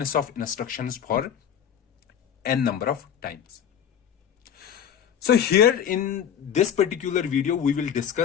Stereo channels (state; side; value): quieter; right; 8.8 dB